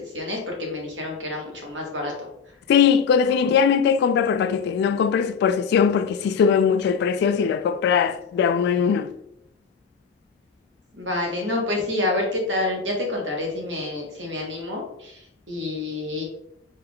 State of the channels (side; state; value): right; quieter; 5.6 dB